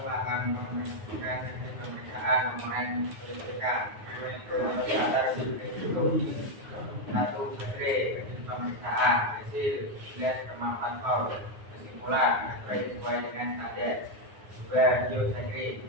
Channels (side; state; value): left; late; 9.6 ms